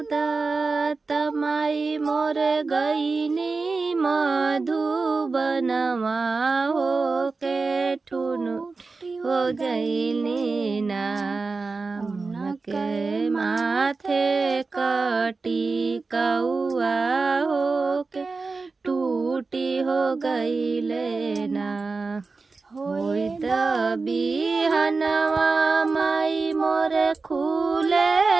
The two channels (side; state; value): left; quieter; 4.1 dB